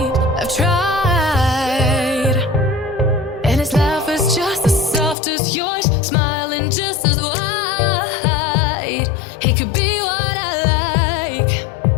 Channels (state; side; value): drops out; right; at 5.2 s